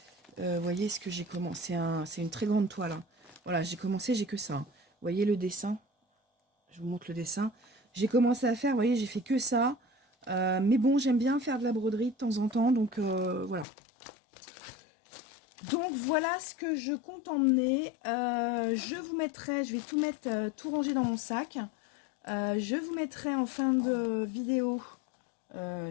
Vous voyez ce que j'ai commencé, c'est une très grande toile. Hein. Voilà, j'ai commencé, j'ai que ça. Hein. Vous voyez le dessin? Je vous montre le dessin. J'ai commencé à faire, vous voyez, j'ai fait que ça. Mais bon, j'aime bien faire de la broderie de temps en temps, donc voilà. Donc voilà ce que je compte emmener. Je vais tout mettre, tout ranger dans mon sac. Je vous mettrai en fin de vidéo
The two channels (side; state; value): right; drops out; at 13.7 s